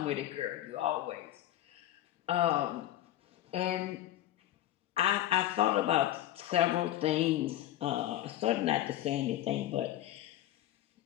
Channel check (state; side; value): quieter; right; 13.5 dB